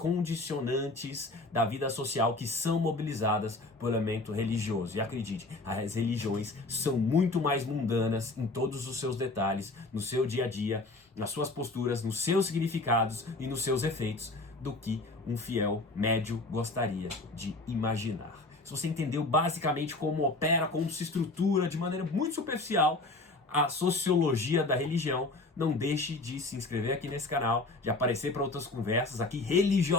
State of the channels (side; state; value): right; quieter; 3.1 dB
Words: da vida social que são mobilizadas pelo elemento religioso. E acredite, as religiões são muito mais mundanas em todos os seus detalhes, no seu dia a dia, nas suas posturas, nos seus significados e nos seus efeitos, do que um fiel médio gostaria de imaginar. Se você entendeu basicamente como opera, como se estrutura de maneira muito superficial a sociologia da religião, não deixe de se inscrever aqui nesse canal, de aparecer para outras conversas aqui